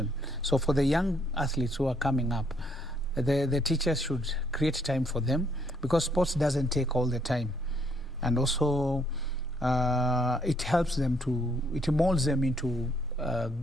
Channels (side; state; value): both; normal; correlation 0.69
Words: So for the young athletes who are coming up, the teachers should create time for them, because sports doesn't take all the time. And also it helps them it molds them into